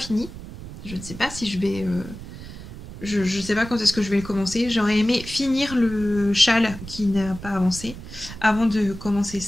Je ne sais pas si je vais... je ne sais pas quand est-ce que je vais le commencer. J'aurais aimé finir le châle qui n'a pas avancé avant de commencer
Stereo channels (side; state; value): right; noise; rumble, 13 dB below the sound